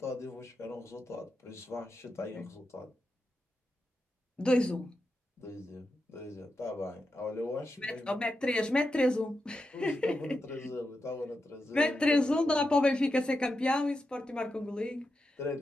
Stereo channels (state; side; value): normal; both; correlation 0.88